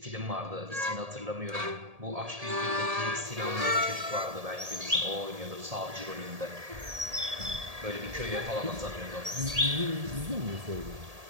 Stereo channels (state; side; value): late; left; 1.7 ms